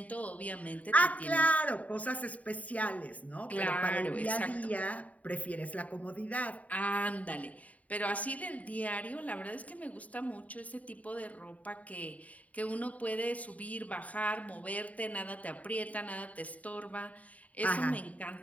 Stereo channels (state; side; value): late; right; 0.070 ms